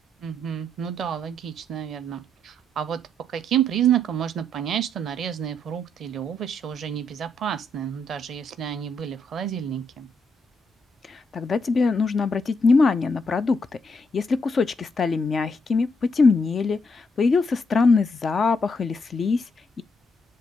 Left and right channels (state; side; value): normal; both; correlation 0.76